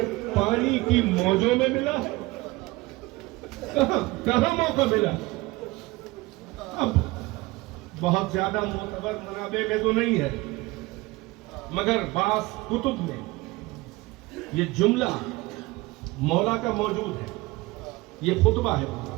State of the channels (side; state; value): left; quieter; 21.3 dB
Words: پانی کی موجوں میں ملا ہے. کہاں موقع ملا؟ بہت زیادہ معتبر منابع میں تو نہیں ہے، مگر بعض کتب میں یہ جملہ مولا کا موجود ہے، یہ خطبہ ہے پورا۔